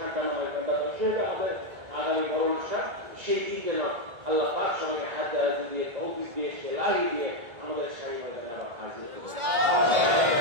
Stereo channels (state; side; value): late; left; 1.5 ms